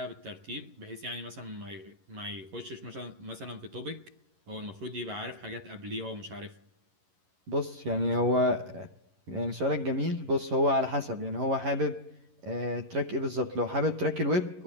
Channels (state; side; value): late; left; 11 ms